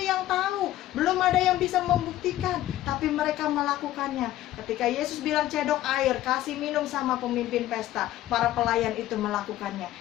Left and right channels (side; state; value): right; quieter; 14.3 dB